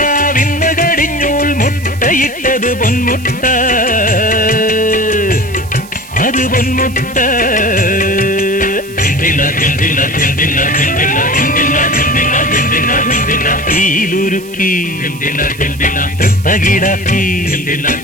കടിഞ്ഞൂൽ മുട്ടയിട്ടത് പൊന്മുട്ട, അത് പൊന്മുട്ട. തീയിലുരുക്കി തൃത്തകിടാക്കി,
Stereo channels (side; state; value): right; noise; hiss, 20 dB below the sound